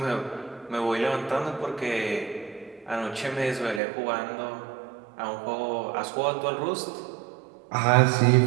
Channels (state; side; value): drops out; left; at 3.8 s